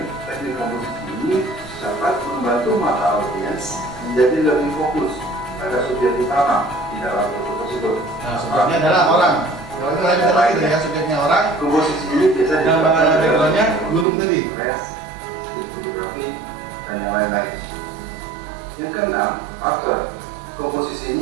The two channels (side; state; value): left; drops out; at 14.1 s